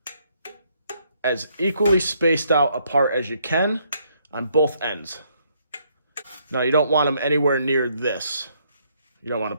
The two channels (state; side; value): inverted; both; correlation -0.71